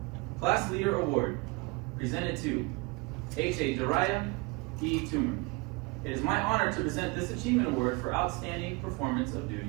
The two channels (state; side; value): quieter; left; 25.5 dB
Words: Class Leader Award, presented to H.A. Dariah E. Toomer. It is my honor to present this achievement award for outstanding performance of